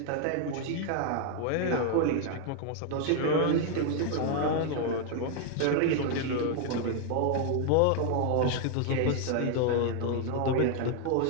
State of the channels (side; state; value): both; different; correlation 0.00